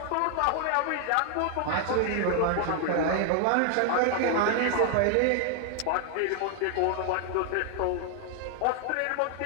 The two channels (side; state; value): both; different; correlation 0.00